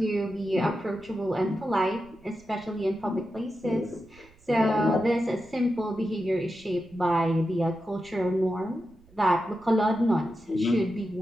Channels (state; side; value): noise; right; rumble, 27 dB below the sound